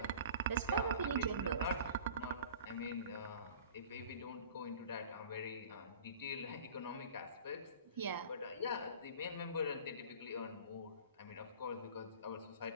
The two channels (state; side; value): inverted; both; correlation -0.42